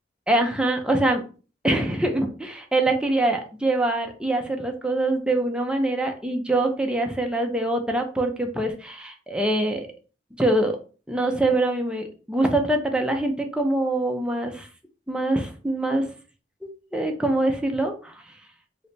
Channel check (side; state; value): both; normal; correlation 0.70